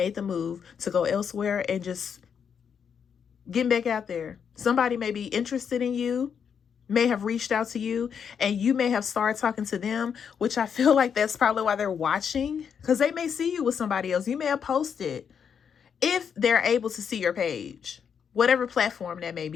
the move to go elsewhere and just getting back out there. Somebody may be interested in you, may have reached out to you, and you may have started talking to them, which I feel like that's probably why they're watching, because they may see you with somebody else. You may have posted, if they're able to see your page, whatever platform that may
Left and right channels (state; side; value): quieter; right; 7.2 dB